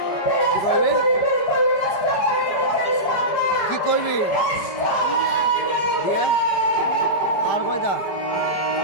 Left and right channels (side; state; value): right; late; 5.2 ms